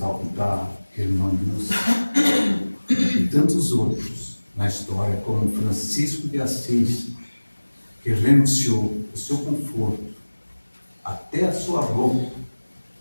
Irmã Lúcia, e tantos outros na história, como Francisco de Assis, que renunciou o seu conforto, até a sua roupa,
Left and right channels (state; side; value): inverted; both; correlation -1.00